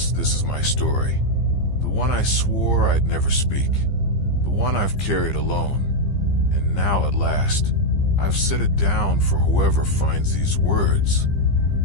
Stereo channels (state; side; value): late; right; 15 ms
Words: is my story. The one I swore I'd never speak. The one I've carried alone. And now at last, I've set it down for whoever finds these words.